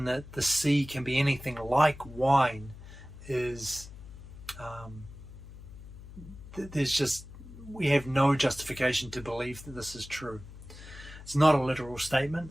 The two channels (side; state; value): left; noise; hum, 16 dB below the sound